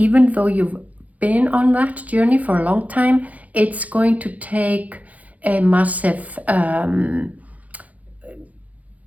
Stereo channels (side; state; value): left; late; 0.073 ms